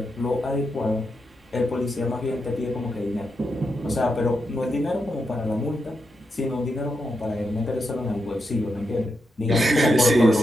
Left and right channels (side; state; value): both; normal; correlation 0.85